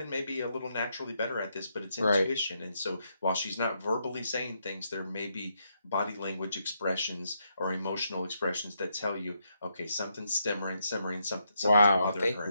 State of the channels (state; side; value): inverted; both; correlation -0.79